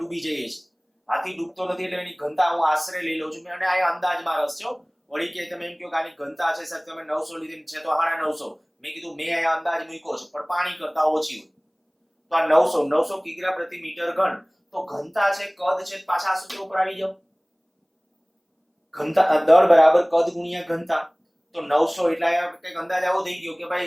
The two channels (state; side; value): identical; both; correlation 1.00